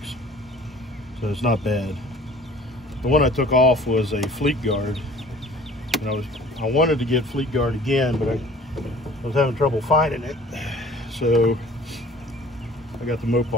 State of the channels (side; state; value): both; normal; correlation 0.49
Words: so it's not bad. The one I took off was a Fleet Guard, and I wanted to get Fleet Guard again, but I was having trouble finding it, so I got the